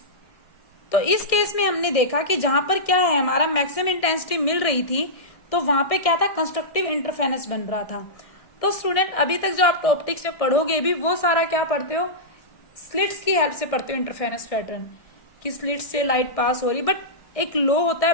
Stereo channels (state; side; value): late; right; 1.6 ms